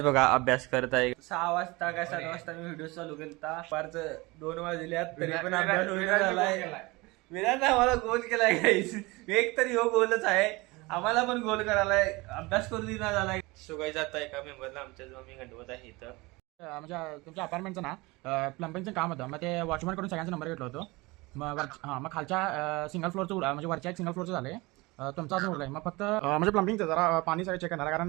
बघा अभ्यास करत आहे. 6 वाजता काय 7 वाजता मी व्हिडिओ चालू केला. पारच 2 वाजल्यात तरी पण अभ्यास होईना झालाय. विराज आम्हाला गोल केलाय गाईस. एक तरी हो गोलच आहे, आम्हाला पण गोल करायलाय, अभ्यास करू दिना झालाय. सुगाई जात आहे एका मेंबरला आमच्या जो मी गणवत आहे इथं. म्हणजे तुमच्या अपार्टमेंटचं ना प्लंबिंगचं काम होतं. मग ते वॉचमॅन कडून सगळ्यांचा नंबर घेतला होतो. मग खालच्या सिंगल फ्लोअरचं म्हणजे वरच्या एक सिंगल फ्लोअरचं झाले. तुमचा अजून उरलाय. मग फक्त म्हणजे प्लंबिंगचं जरा पाणी सगळं चेक करणार,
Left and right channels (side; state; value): left; quieter; 23.4 dB